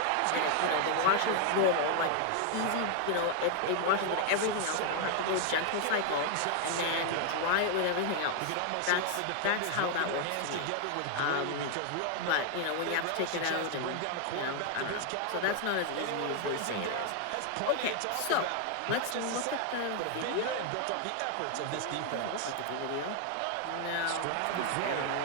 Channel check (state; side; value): different; both; correlation 0.00